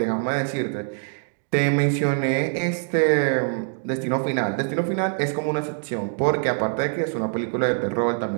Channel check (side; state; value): left; silent; 63 dB below the other